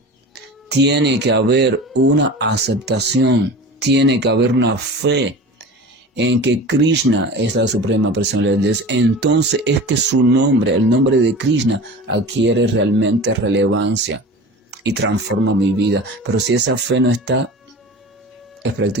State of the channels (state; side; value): normal; both; correlation 0.35